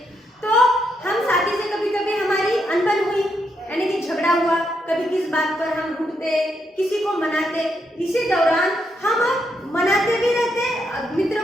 तो हम साथी से कभी कभी हमारी अनबन हुई, यानी कि झगड़ा हुआ, कभी किस बात पर हम रूठते, किसी को मनाते। इसी दौरान हम मनाते भी रहते,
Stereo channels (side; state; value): both; normal; correlation 0.79